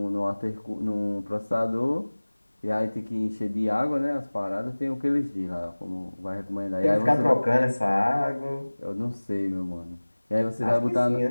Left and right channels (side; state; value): both; inverted; correlation -1.00